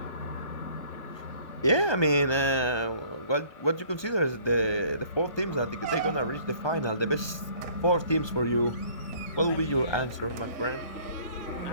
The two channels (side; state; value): right; late; 1.2 ms